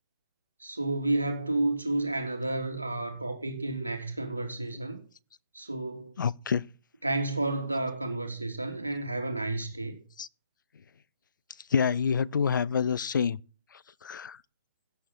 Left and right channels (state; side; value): inverted; both; correlation -0.77